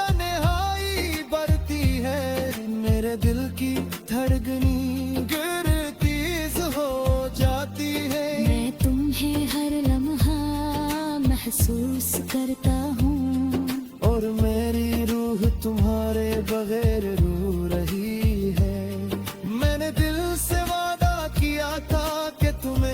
बढ़ती है, मेरे दिल की धड़कनी गिरतीज हो जाती है। मैं तुम्हें हर लम्हा महसूस करता हूँ, और मेरी रूह तुम्हारे बगैर रो रही है। मैंने दिल से वादा किया था कि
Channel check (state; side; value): identical; both; correlation 1.00